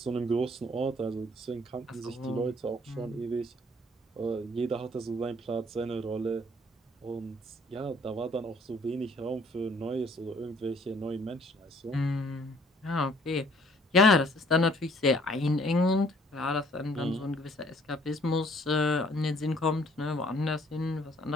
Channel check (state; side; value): normal; both; correlation 0.60